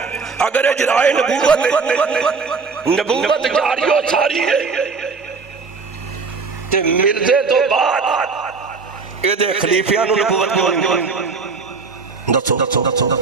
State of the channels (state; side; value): quieter; left; 4.7 dB